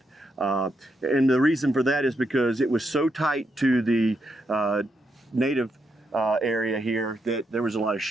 And the reason for that is because it was so tight to the native area here that there was a lot of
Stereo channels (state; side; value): normal; both; correlation 0.80